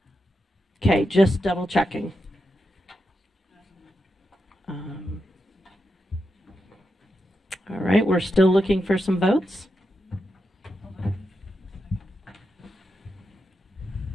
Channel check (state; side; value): normal; both; correlation 0.87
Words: Okay, just double checking. All right, we're still looking for some votes.